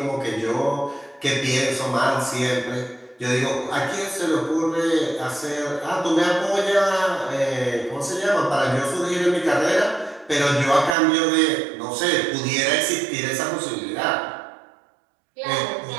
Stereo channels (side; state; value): left; drops out; at 11.0 s